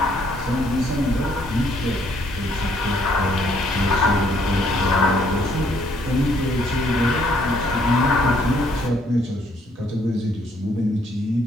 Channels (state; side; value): normal; both; correlation 0.67